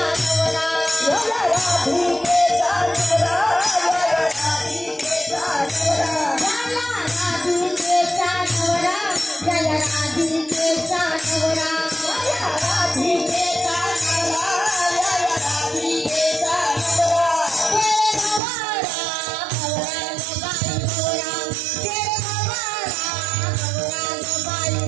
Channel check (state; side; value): drops out; left; at 18.4 s